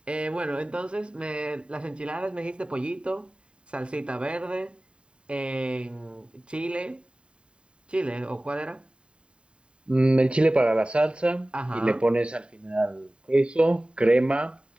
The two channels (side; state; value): left; late; 0.053 ms